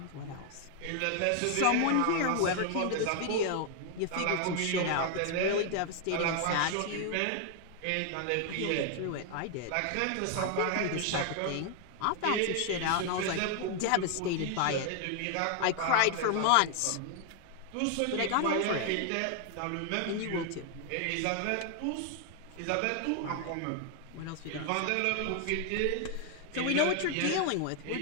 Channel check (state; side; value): different; both; correlation 0.00